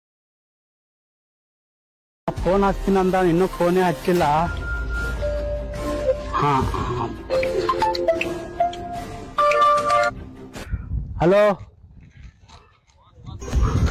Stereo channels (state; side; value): identical; both; correlation 1.00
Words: ಫೋನ್ ಹಚ್ತೀನಂದ ಇನ್ನೂ ಫೋನೇ ಹಚ್ಚಿಲ್ಲ. ಹಾ ಹಲೋ,